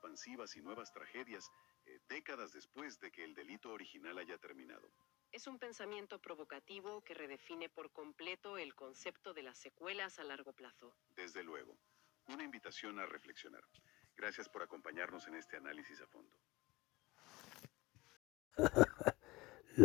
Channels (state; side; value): quieter; right; 21.3 dB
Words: y nuevas tragedias décadas después de que el delito original haya terminado? Es un pensamiento provocativo que redefine por completo el concepto de las secuelas a largo plazo. Desde luego, una invitación a reflexionar. Gracias por acompañarnos en este análisis a fondo.